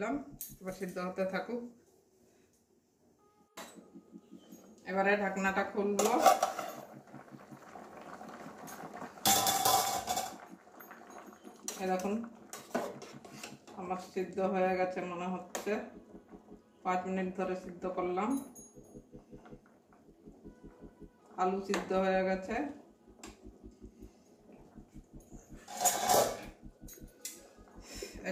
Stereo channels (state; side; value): identical; both; correlation 1.00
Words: এবার সিদ্ধ হতে থাকুক। এবারে ঢাকনাটা খুলবো। দেখুন আমার সিদ্ধ হয়ে গেছে মনে হচ্ছে। 5 মিনিট ধরে সিদ্ধ করলাম, আলু সিদ্ধ হয়ে গেছে।